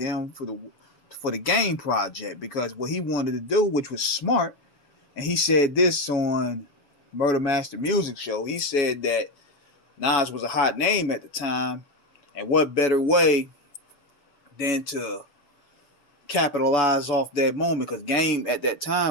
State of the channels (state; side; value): late; right; 7.1 ms